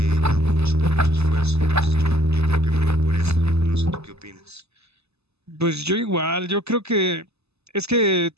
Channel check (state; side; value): late; left; 0.79 ms